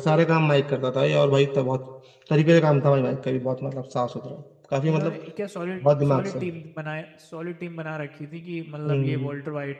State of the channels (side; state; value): both; identical; correlation 1.00